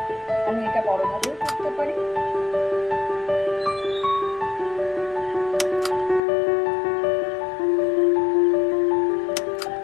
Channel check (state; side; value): drops out; right; at 6.2 s